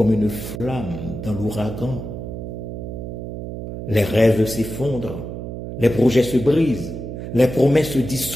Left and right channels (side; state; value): right; noise; hum, 7 dB below the sound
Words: une flamme dans l'ouragan. Les rêves s'effondrent, les projets se brisent, les promesses se